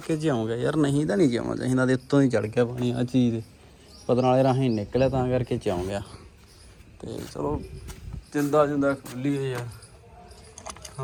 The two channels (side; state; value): both; identical; correlation 1.00